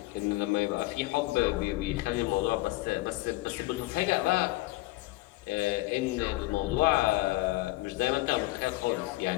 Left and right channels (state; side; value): quieter; right; 19.8 dB